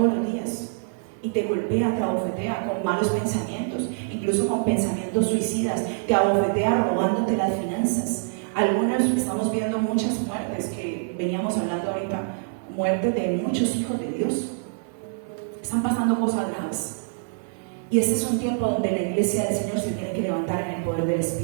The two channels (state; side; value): silent; left; 62 dB below the other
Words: los días. Y te golpea, te abofetea con malos pensamientos, incluso con pensamientos suicidas, te abofetea robándote las finanzas. Algunos estamos viendo muchas muertes que veníamos hablando ahorita, muertes de muchos hijos de Dios. Están pasando cosas graves. Y este es un tiempo donde la iglesia del Señor se tiene que levantar en el poder del